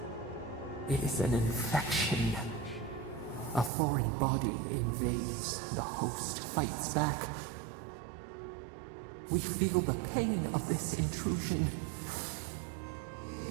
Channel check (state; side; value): drops out; left; at 3.7 s